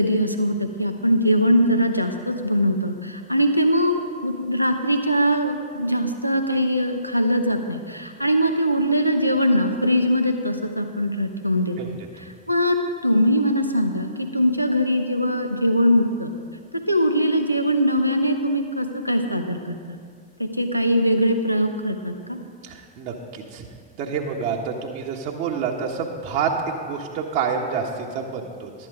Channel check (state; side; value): inverted; both; correlation -0.69